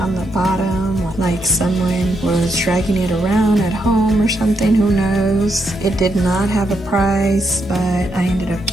the bottom, like someone was dragging it around at home or something, who knows. It did not have a price, but I ended up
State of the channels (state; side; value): normal; both; correlation 0.79